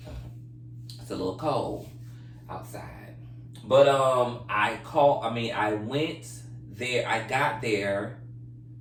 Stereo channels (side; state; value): both; identical; correlation 1.00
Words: it's a little cold outside, but I went there. I got there.